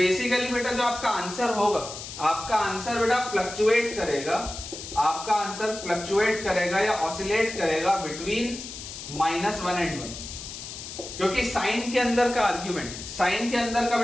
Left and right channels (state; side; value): noise; left; hiss, 10 dB below the sound